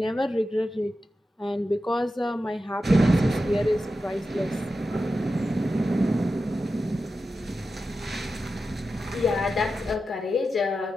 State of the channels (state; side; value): normal; both; correlation 0.91